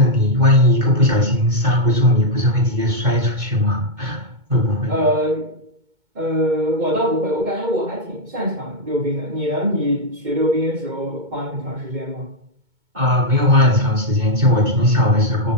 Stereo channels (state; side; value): late; left; 2.2 ms